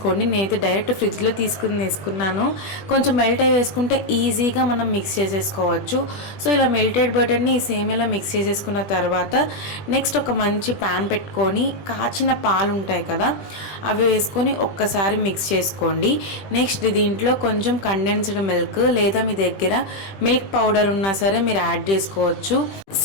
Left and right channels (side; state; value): right; late; 20 ms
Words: నేనైతే డైరెక్ట్ ఫ్రిడ్జ్లో వేసుకున్నాను. కొంచెం మెల్ట్ అయి వేసుకుంటే ఈజీగా మనం మిక్స్ చేసేసుకోవచ్చు. సో ఇలా మెల్టెడ్ బటర్ని ఈ సేమియాలో మిక్స్ చేసేసుకున్న తర్వాత నెక్స్ట్ ఒక మంచి ప్యాన్ పెట్టుకొని కాచిన పాలు ఉంటాయి కదా, అవి వేసుకొని ఒక్కసారి మిక్స్ చేసుకోండి. నెక్స్ట్ దీంట్లో కొంచెం కండెన్స్డ్ మిల్క్ లేదా మీ దగ్గర మిల్క్ పౌడర్ ఉన్నా సరే మీరు యాడ్ చేసుకోవచ్చు.